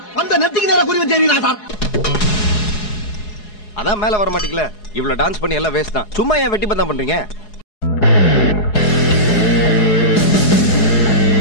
அந்த நெத்திக்கு நேரா குறி வச்சேரீங்களா சார்? அதான் மேல வர மாட்டீங்களா? இவ்வளவு டான்ஸ் பண்ணி எல்லாம் வேஸ்ட் தான். சும்மா ஏன் வெட்டி பந்தம் பண்றீங்க?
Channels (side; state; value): right; late; 4.8 ms